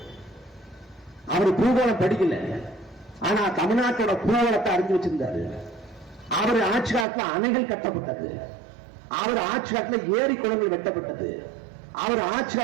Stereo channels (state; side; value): drops out; left; at 7.1 s